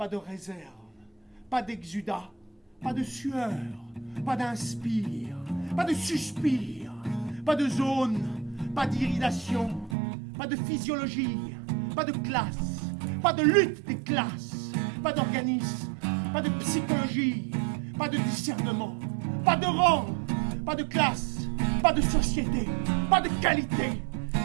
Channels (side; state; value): left; drops out; at 10.0 s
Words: de réserve, pas d'exudat, pas de sueur, pas d'inspire, pas de suspire, pas de zone, pas d'iridation, pas de physiologie, pas de classe, pas de lutte des classes, pas d'organisme, pas de psychologie, pas de discernement, pas de rang, pas de classe, pas de société, pas de qualité,